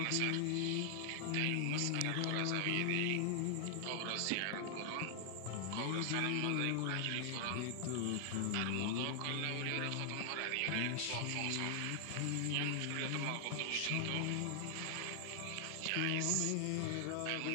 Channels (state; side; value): different; both; correlation 0.00